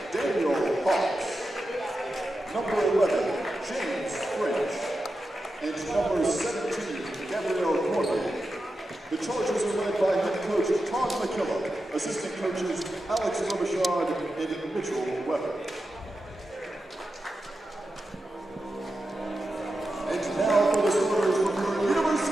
Daniel Hawks. Number 11, James French. And number 17, Gabrielle Cormier. The Chargers are led by head coach Todd McKillop, assistant coaches Alex Robichaud and Mitchell Weber. And now for the starters from the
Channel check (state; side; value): normal; both; correlation 0.90